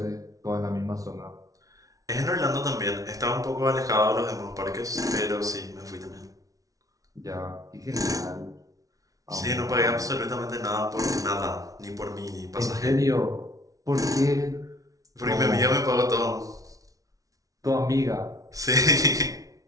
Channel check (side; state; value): left; late; 0.17 ms